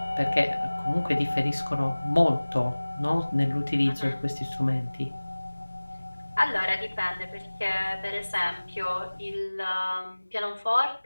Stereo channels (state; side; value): inverted; both; correlation -1.00